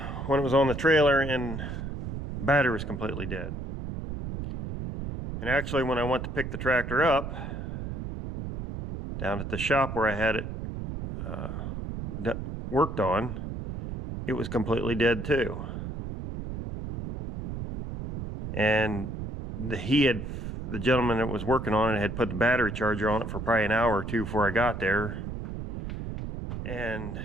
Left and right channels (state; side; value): noise; right; rumble, 6 dB below the sound